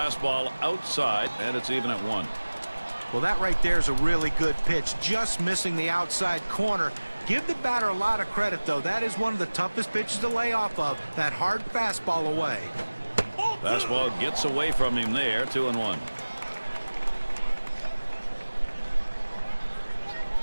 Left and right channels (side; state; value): both; inverted; correlation -1.00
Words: outside, and it's even at 1. Well, that right there is a really good pitch. Just missing the outside corner. Give the batter a lot of credit, though. That is one of the toughest pitches to lay off of. That hard fastball away. Fastball gets away from him there. 2-1.